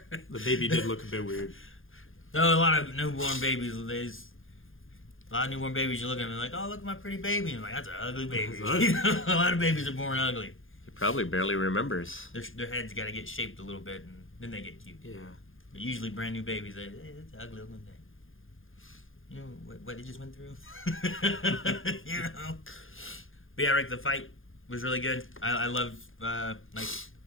The baby did look a bit weird. No, a lot of newborn babies. A lot of newborn babies, you look at them and like, oh, look at my pretty baby. And I'm like, that's an ugly baby. A lot of babies are born ugly. He probably barely remembers. Their heads got to get shaped a little bit, and then they get cute. Yeah. But usually brand new babies, that's an ugly looking thing. you know what he just went through. You know. But yeah, Rick, the fight was really good. I love like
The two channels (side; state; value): right; late; 0.59 ms